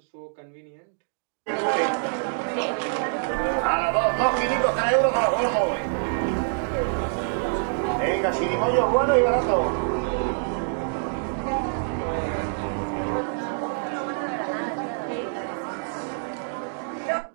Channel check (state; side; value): silent; left; digital silence